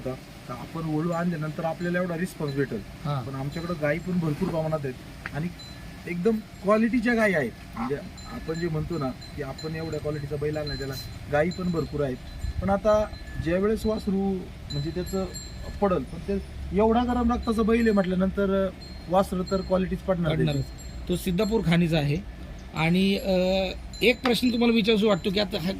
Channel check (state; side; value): identical; both; correlation 1.00